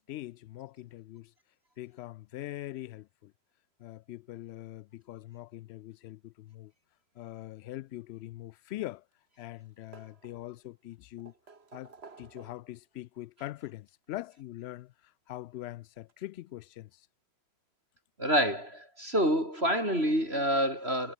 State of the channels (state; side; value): late; left; 3.0 ms